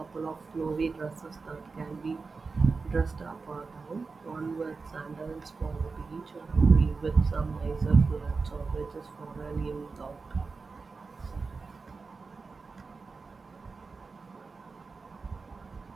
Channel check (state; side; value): quieter; left; 4.4 dB